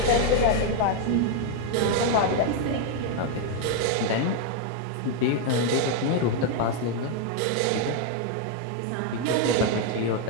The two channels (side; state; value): both; different; correlation 0.01